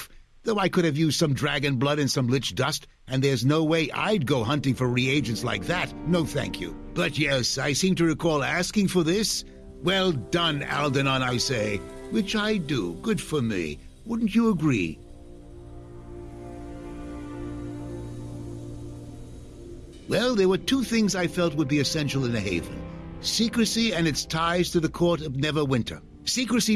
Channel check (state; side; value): identical; both; correlation 1.00